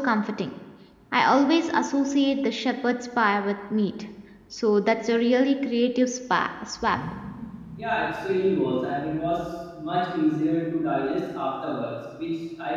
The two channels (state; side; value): identical; both; correlation 1.00